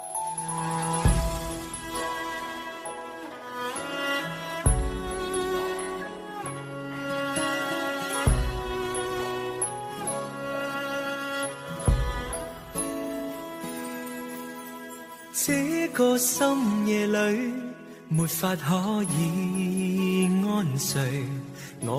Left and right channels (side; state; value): both; identical; correlation 1.00